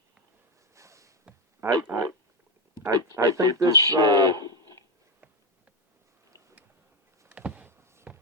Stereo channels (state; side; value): normal; both; correlation 0.10